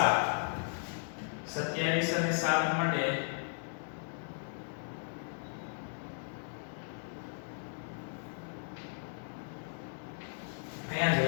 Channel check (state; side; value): silent; right; digital silence